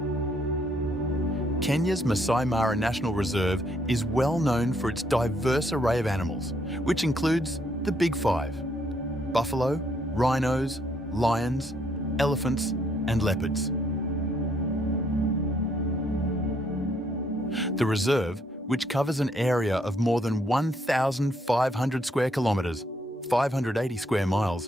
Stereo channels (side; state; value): both; normal; correlation 0.71